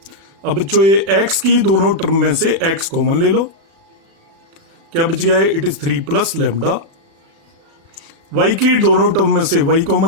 अब बच्चों ये एक्स की दोनों टर्म में से एक्स कॉमन ले लो, क्या बच गया है, it is 3 plus lambda. Y की दोनों टर्म में से वाई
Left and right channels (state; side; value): late; left; 36 ms